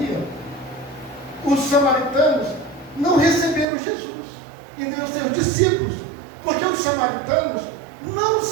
os samaritanos não receberam Jesus, e nem os seus discípulos, porque os samaritanos não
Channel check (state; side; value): drops out; left; at 3.7 s